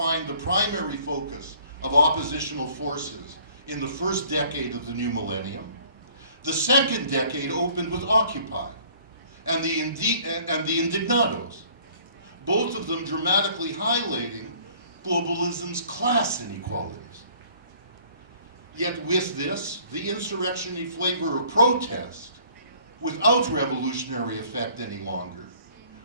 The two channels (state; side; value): inverted; both; correlation -0.55